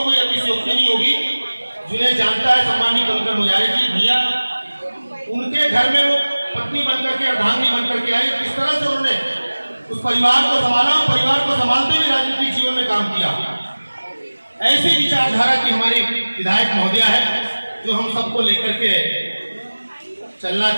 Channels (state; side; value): inverted; both; correlation -1.00